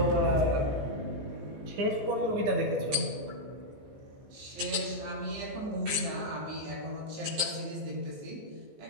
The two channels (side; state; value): left; late; 14 ms